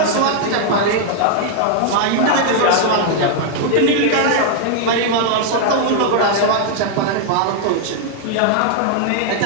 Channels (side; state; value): both; different; correlation 0.00